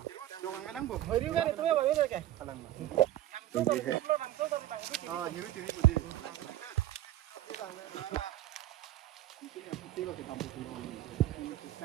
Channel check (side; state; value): left; quieter; 13.7 dB